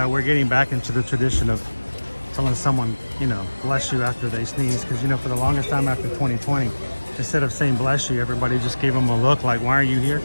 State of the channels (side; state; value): both; inverted; correlation -1.00